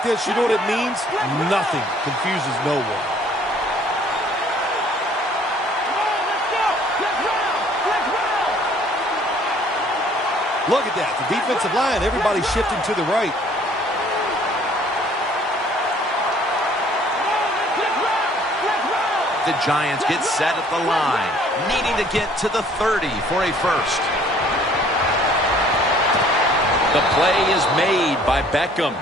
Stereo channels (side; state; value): both; normal; correlation 0.57